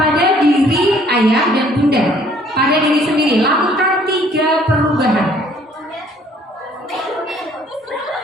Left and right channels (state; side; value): normal; both; correlation 0.60